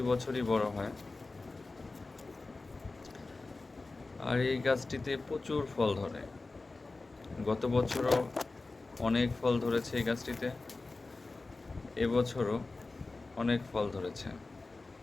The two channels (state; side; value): quieter; right; 3.5 dB